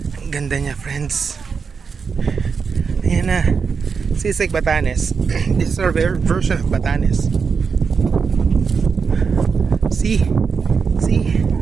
Ang ganda niya, friends. Ayan na. Sisig, Batanes. This is our version of Batanes. See? See?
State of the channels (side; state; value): left; quieter; 5.6 dB